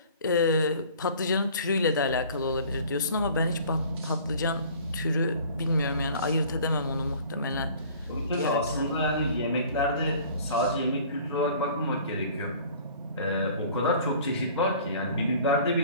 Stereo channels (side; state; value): both; inverted; correlation -0.49